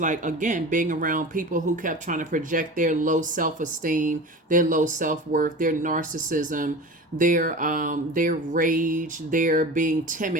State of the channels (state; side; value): normal; both; correlation 0.33